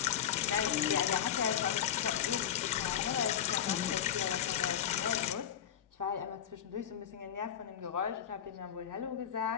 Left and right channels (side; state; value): right; quieter; 9.6 dB